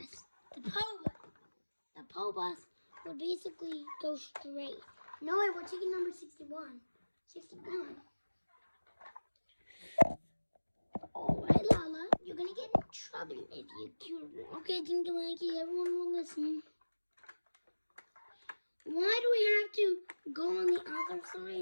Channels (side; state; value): both; inverted; correlation -1.00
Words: The PO bus will basically go straight. No, wait, we're taking number 61. 61. Alright, Lala, you're gonna get in trouble if you cute. Okay, Dinky Winky, everyone will listen. Why do we have to go on the other